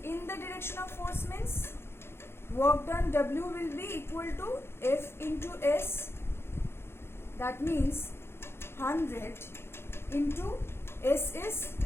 In the direction of force means work done W will be equal to F into S. That means 100 into S is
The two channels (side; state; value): right; late; 0.12 ms